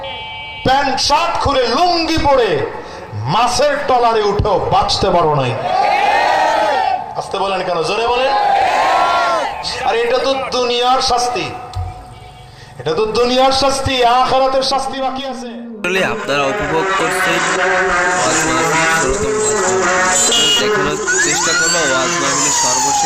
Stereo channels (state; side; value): identical; both; correlation 1.00